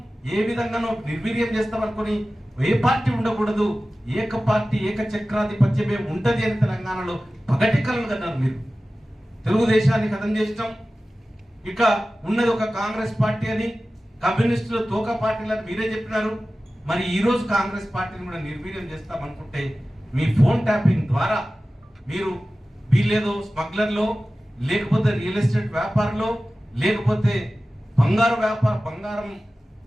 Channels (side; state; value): both; normal; correlation 0.96